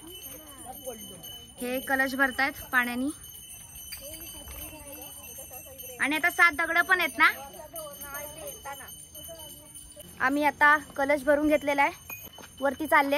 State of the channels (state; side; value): identical; both; correlation 1.00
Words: हे कलश भरतायत पाण्याने आणि आता 7 दगड पण आहेत ना. आम्ही आता कलश भरून घेतलेला आहे. वरती